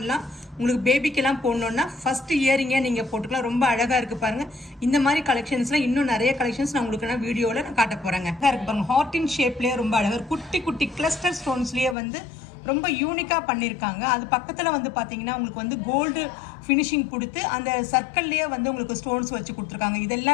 உங்களுக்கு பேபிக்கெல்லாம் போடணும்னா ஃபர்ஸ்ட் இயரிங்கே நீங்க போட்டுக்கலாம். ரொம்ப அழகா இருக்கு பாருங்க. இந்த மாதிரி கலெக்ஷன்ஸ்ல இன்னும் நிறைய கலெக்ஷன்ஸ் நான் உங்களுக்கு வீடியோல நான் காட்ட போறேங்க. இருக்கு பாருங்க, ஹார்ட் இன் ஷேப்லயே ரொம்ப அழகா குட்டி குட்டி கிளஸ்டர் ஸ்டோன்ஸ்லயே வந்து ரொம்ப யூனிக்கா பண்ணியிருக்காங்க. அது பக்கத்துல வந்து பாத்தீங்கன்னா உங்களுக்கு வந்து கோல்டு ஃபினிஷிங் கொடுத்து அந்த சர்க்கிள்லயே வந்து உங்களுக்கு ஸ்டோன்ஸ் வச்சு கொடுத்துருக்காங்க. இது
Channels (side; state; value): right; drops out; at 12.0 s